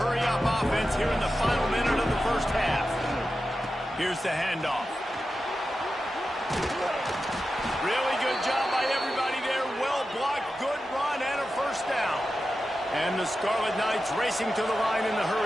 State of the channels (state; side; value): normal; both; correlation 0.92